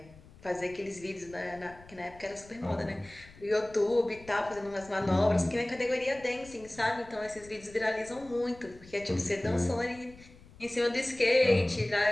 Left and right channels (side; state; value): left; noise; rumble, 22 dB below the sound